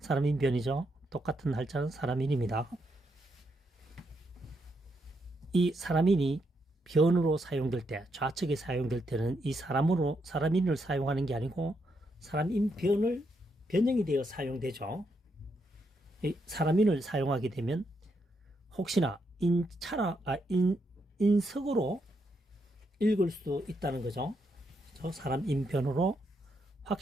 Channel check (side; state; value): both; normal; correlation 0.79